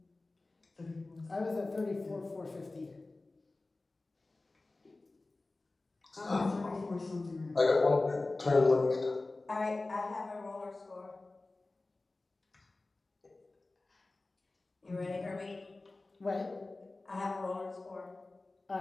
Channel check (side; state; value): right; quieter; 3.2 dB